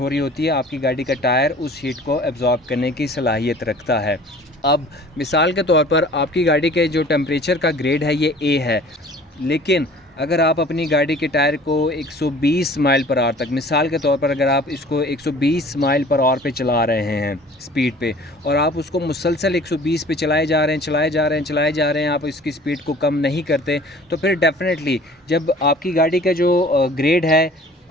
रही होती है आपकी गाड़ी का टायर उस हीट को एब्ज़ॉर्ब करने की सलाहियत रखता है। अब मिसाल के तौर पर आपकी गाड़ी के जो टेम्परेचर का ग्रेड है ये ए है, लेकिन अगर आप अपनी गाड़ी के टायर को 120 माइल पर आवर तक, मिसाल के तौर पर अगर आप इसको 120 माइल पर आवर पे चला रहे हैं स्पीड पे, और आप उसको मुसलसल 120 पे चलाए जा रहे हैं, आप इसकी स्पीड को कम नहीं करते, तो फिर डेफिनेटली जब आपकी गाड़ी का जो ग्रेड है,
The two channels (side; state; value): both; normal; correlation 0.48